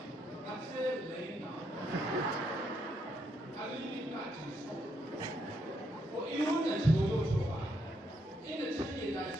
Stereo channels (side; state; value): both; normal; correlation 0.76